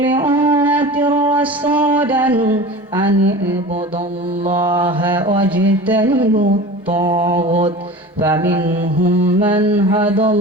উম্মাতির রাসূলান আন ইবুদুল্লাহা ওয়াজতানিবুত তাগুত فمنهم من هدى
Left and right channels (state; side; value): normal; both; correlation 0.35